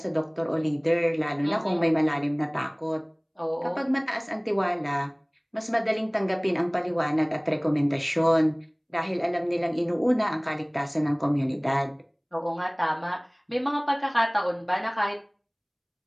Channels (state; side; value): identical; both; correlation 1.00